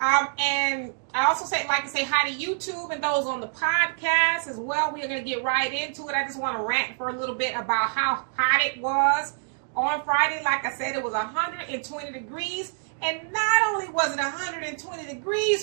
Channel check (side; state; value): left; silent; digital silence